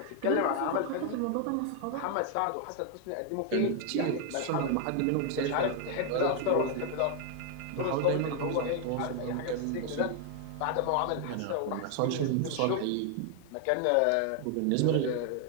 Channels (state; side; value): different; both; correlation 0.00